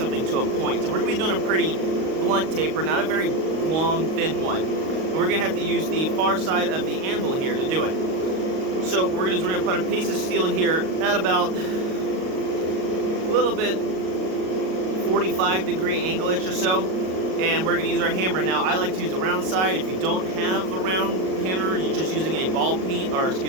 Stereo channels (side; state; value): left; late; 38 ms